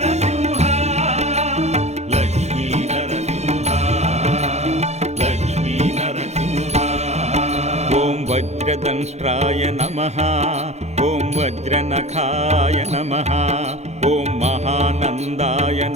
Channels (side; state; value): left; late; 0.32 ms